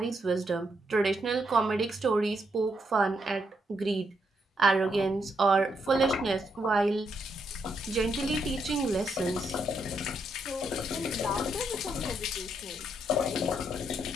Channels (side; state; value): both; normal; correlation 0.78